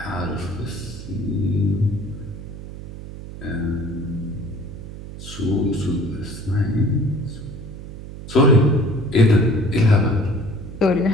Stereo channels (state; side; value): noise; right; hum, 12 dB below the sound